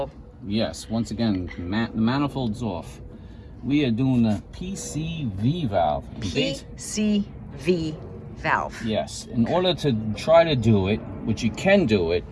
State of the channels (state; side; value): identical; both; correlation 1.00